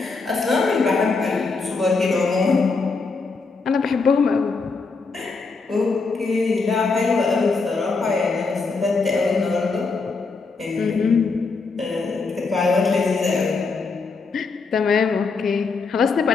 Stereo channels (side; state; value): right; quieter; 4.3 dB